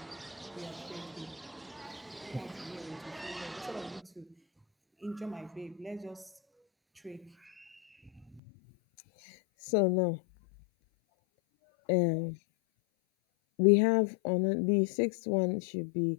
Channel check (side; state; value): right; drops out; at 8.4 s